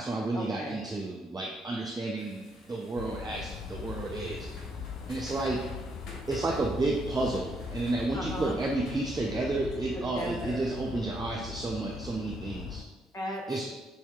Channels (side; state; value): both; normal; correlation 0.75